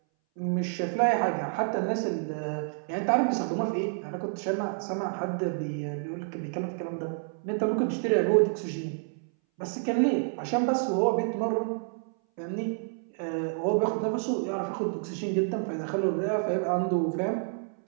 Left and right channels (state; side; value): silent; left; 59 dB below the other